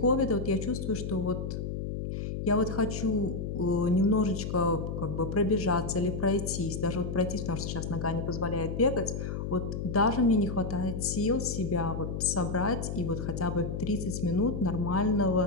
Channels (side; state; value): left; noise; hum, 4 dB below the sound